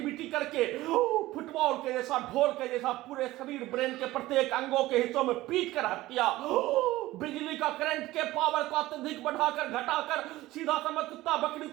करके फुटबॉल के जैसा, ढोल के जैसा पूरे शरीर, ब्रेन के प्रत्येक अंगों के हिस्सों में पीट कर हत्या, बिजली का करंट के पावर को अत्यधिक बढ़ाकर घटाकर सीधा समझ कुत्ता बकरी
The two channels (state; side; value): quieter; left; 17.3 dB